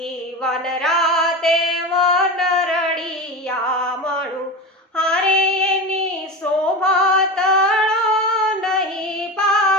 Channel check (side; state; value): both; normal; correlation 0.25